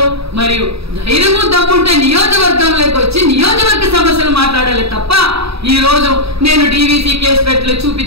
మరియు ధైర్యము దమ్ముంటే నియోజకవర్గంలోకి వచ్చి నియోజకవర్గ సమస్యలు మాట్లాడాలి తప్ప ఈ రోజు నేను డీవీసీ కేసు పెట్టలేదు,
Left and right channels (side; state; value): left; late; 0.77 ms